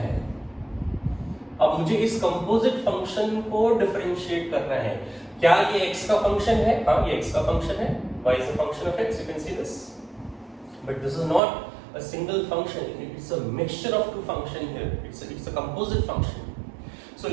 अब मुझे इस कंपोजिट फंक्शन को डिफरेंशिएट करना है. क्या ये x का फंक्शन है? हाँ, ये x का फंक्शन है. y is a function of x. You can see this. But this is not a single function. It's a mixture of two functions here. It's a composite function. So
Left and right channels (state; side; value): drops out; left; at 11.4 s